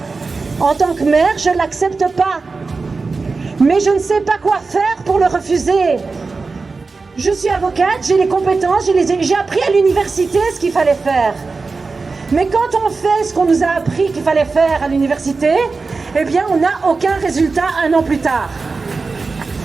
en tant que mère, je ne l'accepte pas. Mais je ne sais pas quoi faire pour le refuser. Je suis avocate, j'ai les compétences, j'ai appris à l'université ce qu'il fallait faire. Mais quand on fait ce qu'on nous a appris qu'il fallait faire à l'université, eh bien on n'a aucun résultat 1 an plus tard.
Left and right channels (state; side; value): quieter; left; 4.2 dB